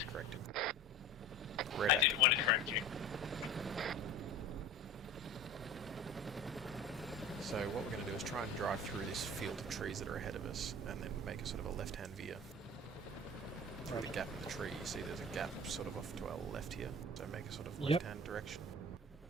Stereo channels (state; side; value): normal; both; correlation 0.37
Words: Corrected. I didn't want to correct you. this field of trees that are ahead of us, and then make a sort of a left-hand veer through the gap in the tree. You see there's a gap sort of off to our left here, so make a sort of left-hand direction.